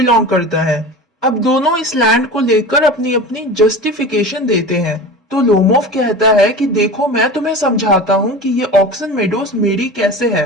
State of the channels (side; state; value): both; normal; correlation 0.32